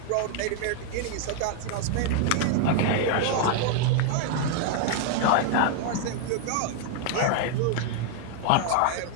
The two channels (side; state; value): both; different; correlation 0.00